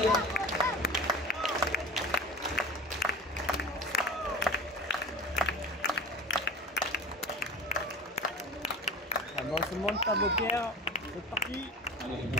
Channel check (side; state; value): both; normal; correlation 0.35